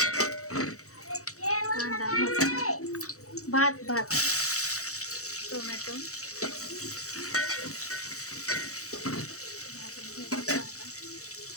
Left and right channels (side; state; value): right; late; 0.65 ms